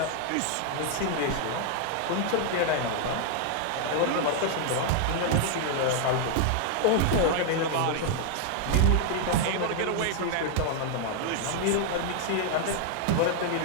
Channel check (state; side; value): different; both; correlation 0.00